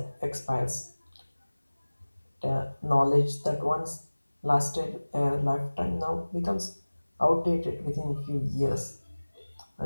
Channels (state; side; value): inverted; both; correlation -1.00